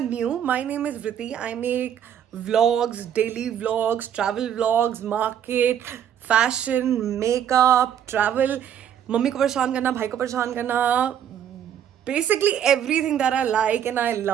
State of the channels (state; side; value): quieter; left; 9.5 dB